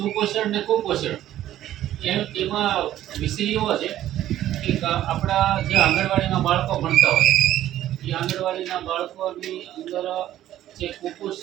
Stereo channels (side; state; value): left; quieter; 12.9 dB